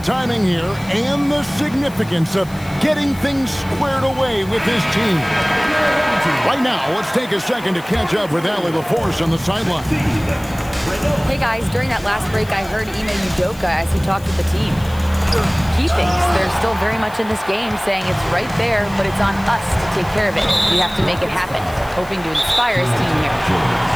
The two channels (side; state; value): left; noise; hiss, 21 dB below the sound